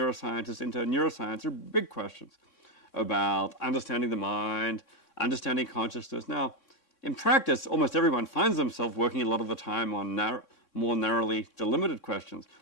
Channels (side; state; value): right; late; 3.6 ms